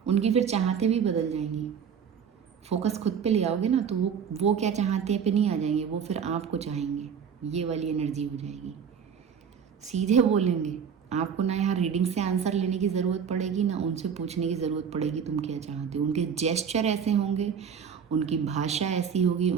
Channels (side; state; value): left; quieter; 7.2 dB